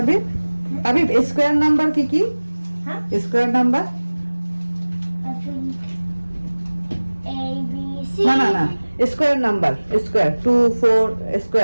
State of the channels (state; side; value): inverted; both; correlation -1.00